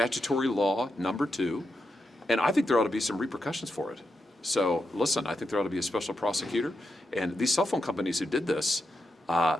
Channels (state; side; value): normal; both; correlation 0.86